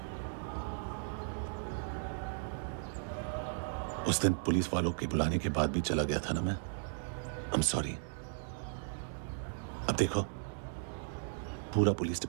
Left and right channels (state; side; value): silent; left; digital silence